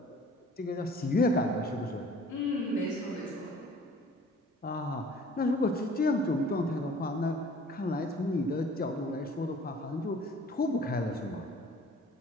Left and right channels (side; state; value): both; normal; correlation 0.51